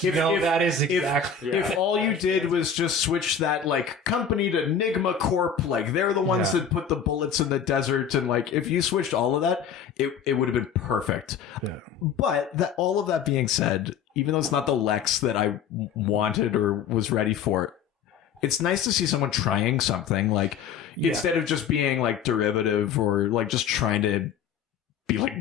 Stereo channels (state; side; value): quieter; right; 7.1 dB